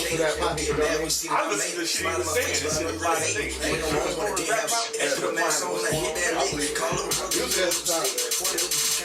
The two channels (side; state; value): both; identical; correlation 1.00